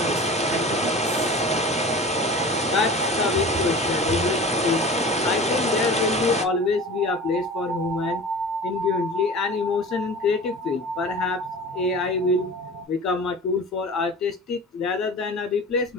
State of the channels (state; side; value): normal; both; correlation 0.37